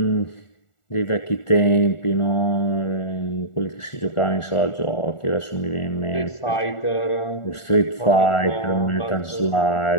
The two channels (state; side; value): late; right; 1.4 ms